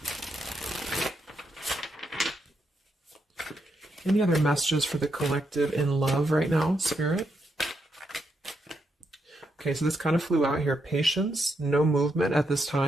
Any other messages for the collective in love right now, Spirit? Okay, so this kind of flew out here. Patience, no movement at this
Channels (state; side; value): normal; both; correlation 0.80